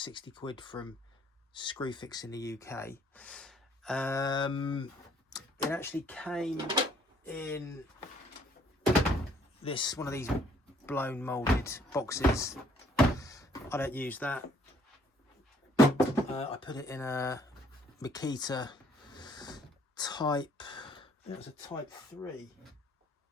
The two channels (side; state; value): both; normal; correlation 0.63